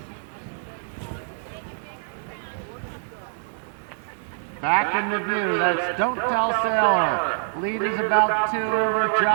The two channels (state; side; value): silent; left; 62 dB below the other